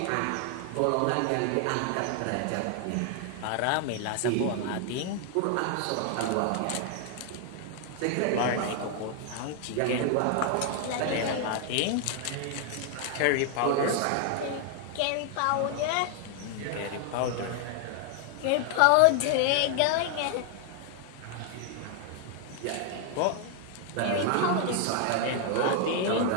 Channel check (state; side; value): different; both; correlation 0.00